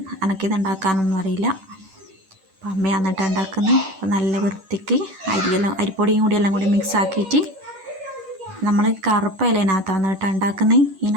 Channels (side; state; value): left; late; 10 ms